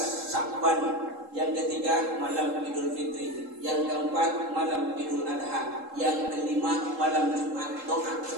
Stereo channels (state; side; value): late; left; 3.7 ms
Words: Sya'ban. Yang ketiga malam Idul Fitri. Yang keempat malam Idul Adha. Yang kelima malam Jumat. Doa